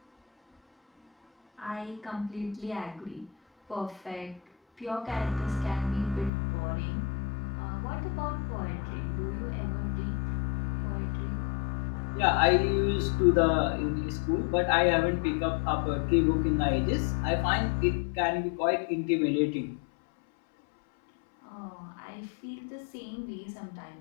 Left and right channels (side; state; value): right; drops out; at 6.3 s